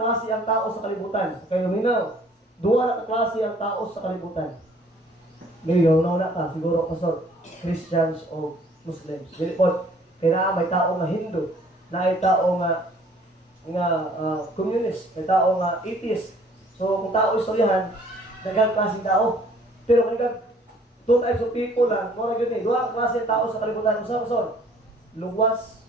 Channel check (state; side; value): normal; both; correlation 0.57